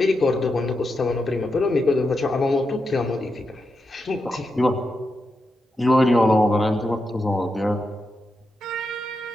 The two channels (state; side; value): normal; both; correlation 0.87